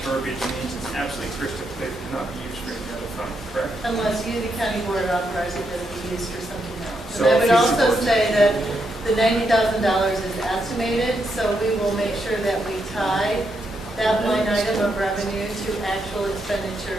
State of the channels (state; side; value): normal; both; correlation 0.80